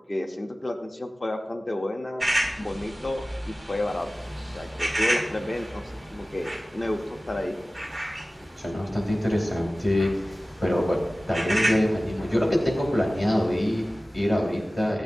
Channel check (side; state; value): both; normal; correlation 0.97